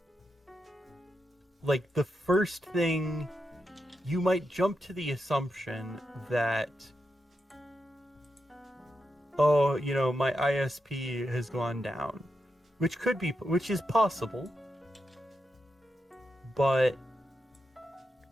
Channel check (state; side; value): normal; both; correlation 0.86